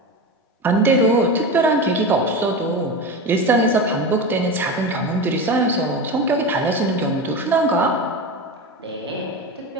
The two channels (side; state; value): both; normal; correlation 0.23